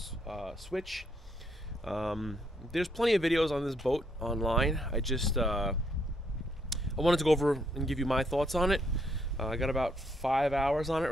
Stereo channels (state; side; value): normal; both; correlation 0.73